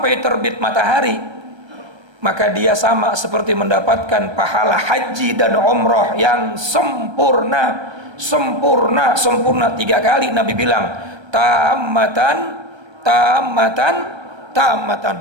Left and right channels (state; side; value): late; left; 1.3 ms